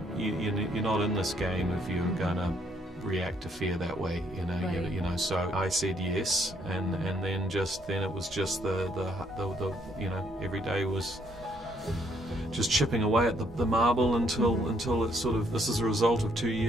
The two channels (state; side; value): normal; both; correlation 0.70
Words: not in this game if you're gonna react to fear that way, you know. Right. You know, so I said yes, and then it was just the you know, every day was just chipping away at the marble until it's sort of, this is a result of 2